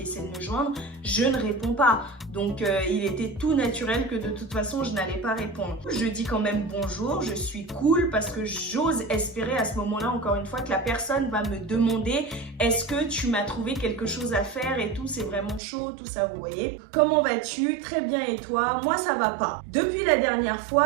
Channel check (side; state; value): left; drops out; at 15.6 s